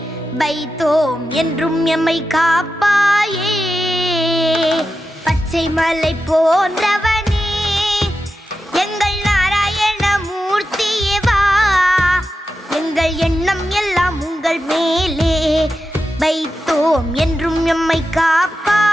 வைத்தோம் என்றும் எம்மை காப்பாயே. பச்சை மலை போன்றவனே எங்கள் நாராயண மூர்த்தியே வா. எங்கள் எண்ணம் எல்லாம் உங்கள் மேலே வைத்தோம் என்றும் எம்மை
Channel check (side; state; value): both; normal; correlation 0.90